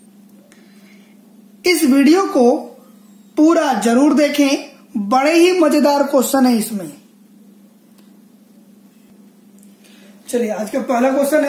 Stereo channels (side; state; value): both; identical; correlation 1.00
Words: इस वीडियो को पूरा जरूर देखें, बड़े ही मजेदार क्वेश्चन है इसमें। चलिए, आज का पहला क्वेश्चन